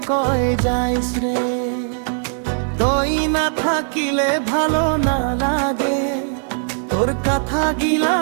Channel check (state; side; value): silent; left; digital silence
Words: কয় যাইস রে, তুই না থাকিলে ভালো না লাগে, তোর কথা